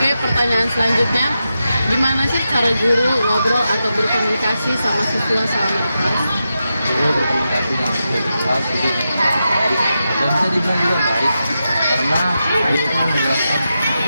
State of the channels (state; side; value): inverted; both; correlation -0.89